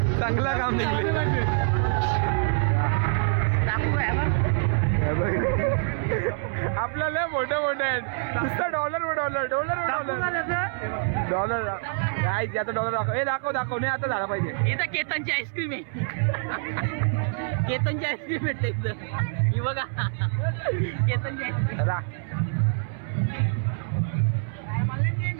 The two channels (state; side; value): silent; left; 61 dB below the other